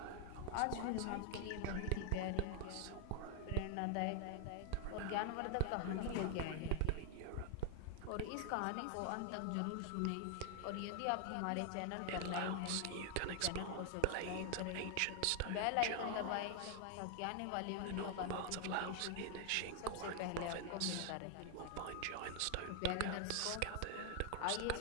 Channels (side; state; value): both; different; correlation 0.00